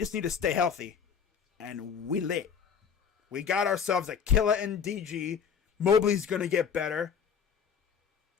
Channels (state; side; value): quieter; right; 7.0 dB